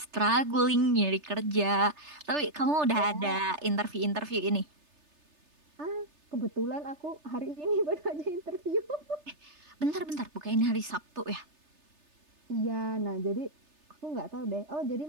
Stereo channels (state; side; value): late; left; 3.3 ms